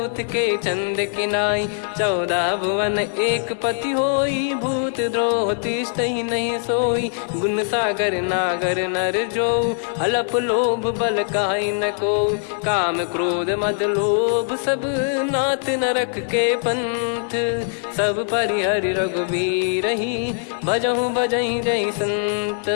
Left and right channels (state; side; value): silent; right; digital silence